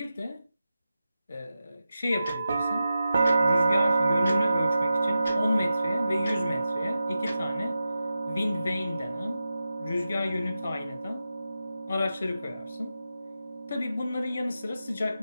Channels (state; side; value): inverted; both; correlation -0.91